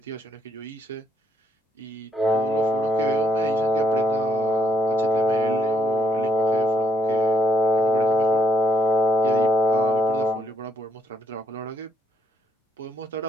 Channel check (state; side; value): normal; both; correlation 0.71